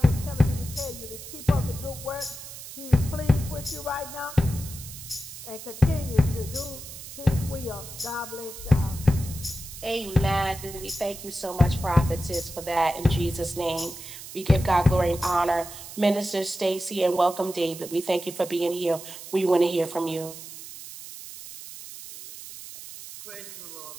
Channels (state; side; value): noise; right; hiss, 13 dB below the sound